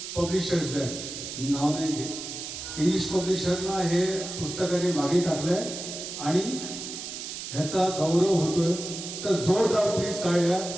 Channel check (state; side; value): noise; right; hiss, 8 dB below the sound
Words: पब्लिशर्स आहेत, मी नाव नाही घेत, इंग्लिश पब्लिशरना हे पुस्तकाने मागे टाकलं आहे आणि ह्याचा गौरव होतोय. तर जोरदार प्लीज टाळ्या